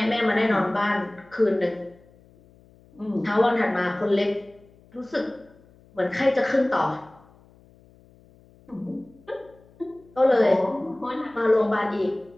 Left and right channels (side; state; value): left; noise; hum, 28 dB below the sound